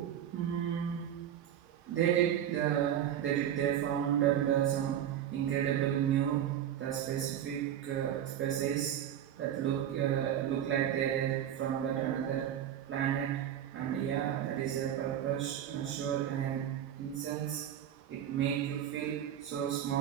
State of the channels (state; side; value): quieter; left; 10.4 dB